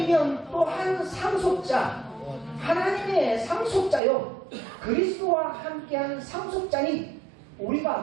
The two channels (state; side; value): drops out; left; at 4.0 s